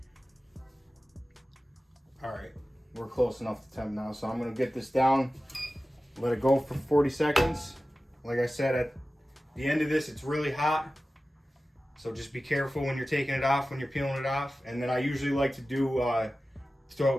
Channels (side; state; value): both; normal; correlation 0.95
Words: All right, we're close enough to temp now, so I'm gonna get this down, let it go for 40 seconds. Like I said, at the end of this, it's really hot, so just be careful when you're taking it off, when you're peeling it off. And then I usually like to do,